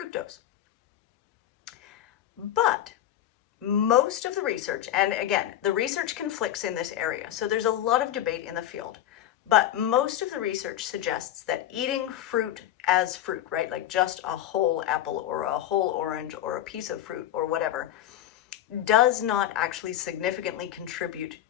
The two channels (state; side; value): quieter; right; 12.0 dB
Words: But most of the research, and again, the research conflicts in this area, so there's a lot of debate in the field. But most of the research suggests that eating fruit as fruit, right, like just a whole apple or a whole orange or a piece of fruit or whatever, does not actually significantly contribute